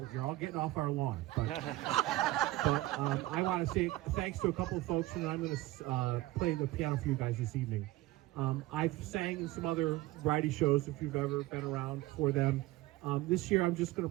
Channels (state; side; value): quieter; left; 17.7 dB